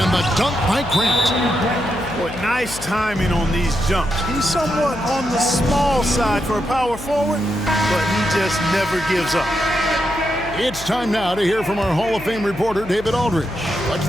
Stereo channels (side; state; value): left; noise; hum, 14 dB below the sound